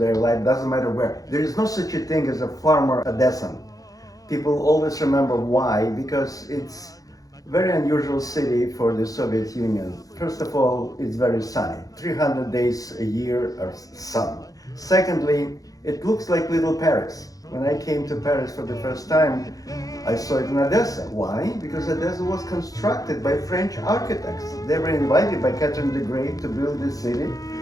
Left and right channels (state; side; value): late; right; 0.17 ms